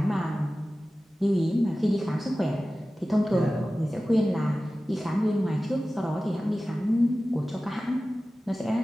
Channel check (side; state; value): both; normal; correlation 0.96